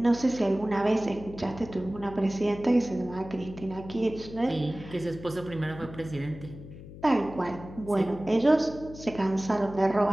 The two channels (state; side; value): noise; left; hum, 15 dB below the sound